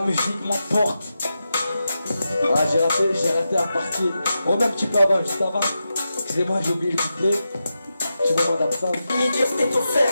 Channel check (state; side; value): inverted; both; correlation -0.89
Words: m'emporte. Ah j'ai raté la partie. On met un petit peu avant, juste avant. Excusez-moi, j'ai oublié le couplet. Petit moment d'absence. Illimité, c'est offert